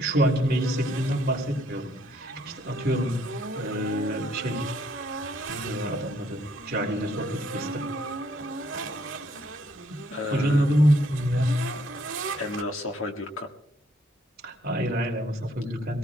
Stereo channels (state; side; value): normal; both; correlation 0.68